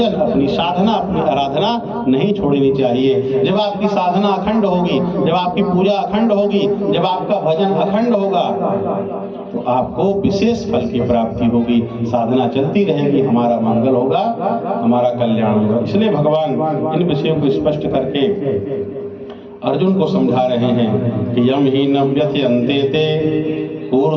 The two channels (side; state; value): both; identical; correlation 1.00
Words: अपनी साधना अपनी आराधना नहीं छोड़नी चाहिए। जब आपकी साधना अखंड होगी, जब आपकी पूजा अखंड होगी, जब आपका भजन अखंड होगा तो आपको विशेष फल की प्राप्ति होगी, साधना चलती रहेगी, हमारा मंगल होगा, हमारा कल्याण होगा। इसलिए भगवान इन विषयों को स्पष्ट करके अर्जुन को समझा रहे हैं कि यम ही न व्यथयन्ते ते